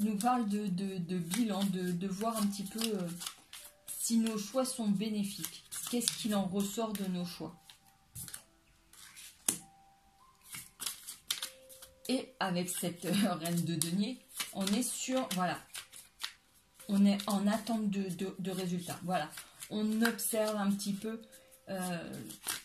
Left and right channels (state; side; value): identical; both; correlation 1.00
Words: parle de bilan, de voir un petit peu si nos choix sont bénéfiques. Qu'est-ce qu'il en ressort de nos choix? Et avec cette reine de denier, on est sur, voilà, on est en attente de résultats. Voilà, on observe un petit peu